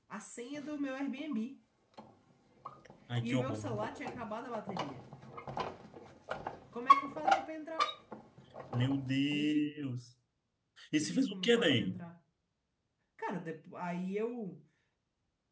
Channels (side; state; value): both; identical; correlation 1.00